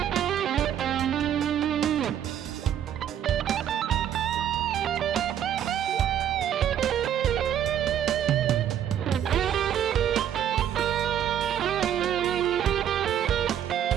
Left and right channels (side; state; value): left; quieter; 10.0 dB